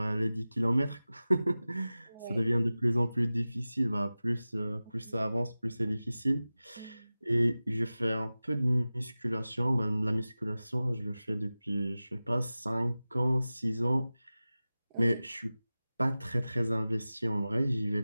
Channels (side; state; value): both; inverted; correlation -0.97